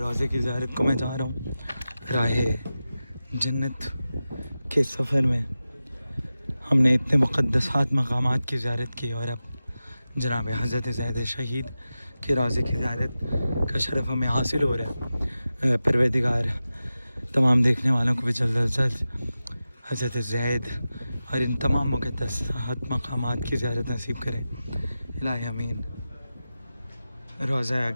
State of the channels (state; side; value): inverted; both; correlation -0.93